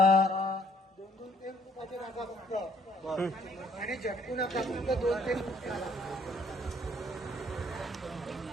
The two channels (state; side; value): normal; both; correlation 0.63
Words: आणि झटकू नका, फक्त 2-3.